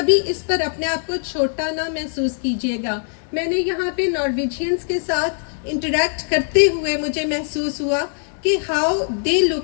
اس پر اپنے آپ کو چھوٹا نہ محسوس کیجیے گا. میں نے یہاں پہ نارویجینز کے ساتھ انٹریکٹ کرتے ہوئے مجھے محسوس ہوا کہ how they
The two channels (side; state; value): right; silent; 57 dB below the other